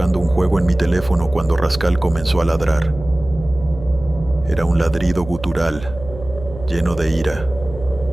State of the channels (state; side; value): noise; right; hum, 14 dB below the sound